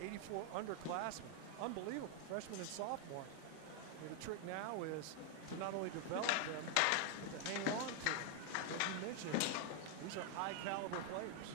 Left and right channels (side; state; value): both; different; correlation 0.00